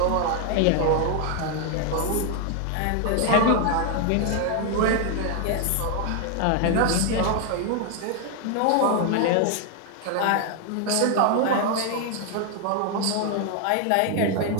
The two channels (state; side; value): different; both; correlation 0.00